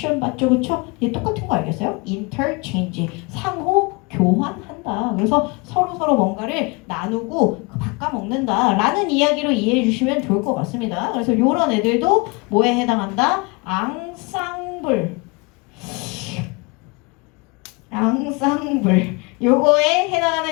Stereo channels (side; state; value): right; quieter; 28.8 dB